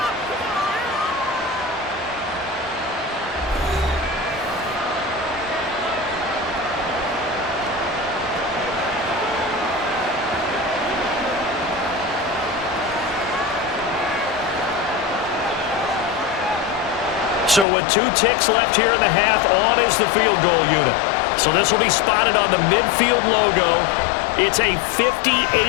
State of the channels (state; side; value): drops out; right; at 17.7 s